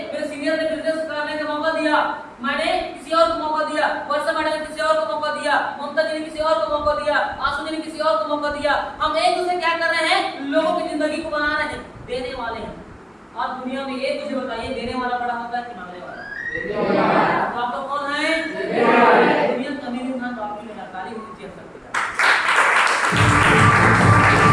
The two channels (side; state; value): both; identical; correlation 1.00